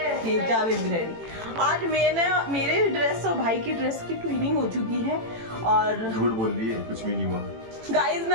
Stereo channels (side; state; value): left; late; 18 ms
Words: आज मैंने मेरे ड्रेस और भाई की ड्रेस की ट्विनिंग हो चुकी है, और झूठ बोल रही है, कुछ भी नहीं हुआ गाइस।